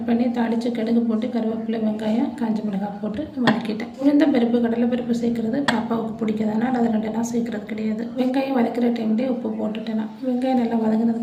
பண்ணி தாளித்து கடுகு போட்டு கருவேப்பிலை வெங்காயம் காஞ்ச மிளகாய் போட்டு வதக்கிட்டேன். உளுந்த பருப்பு கடலை பருப்பு சேர்க்குறது பாப்பாவுக்கு பிடிக்காதனால அதை 2 நாள் சேர்க்குறது கிடையாது. வெங்காயம் வதக்கிற டைம்லேயே உப்பு போட்டுட்டேன். வெங்காயம் நல்லா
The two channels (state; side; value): identical; both; correlation 1.00